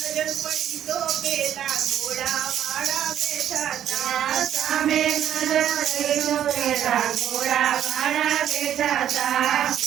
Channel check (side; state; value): left; quieter; 10.5 dB